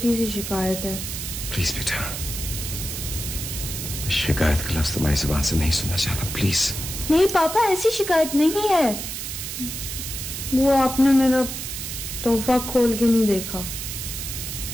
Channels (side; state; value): right; noise; hiss, 6 dB below the sound